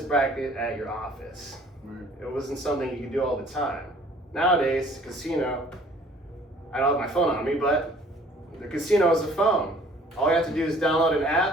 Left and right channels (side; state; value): both; normal; correlation 0.54